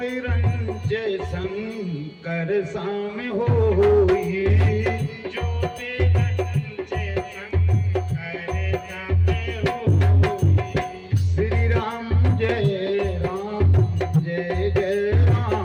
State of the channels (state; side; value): identical; both; correlation 1.00